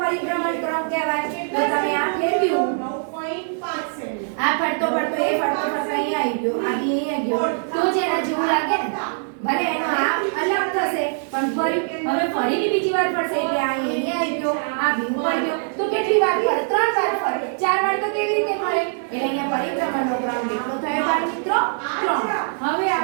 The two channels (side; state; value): left; silent; digital silence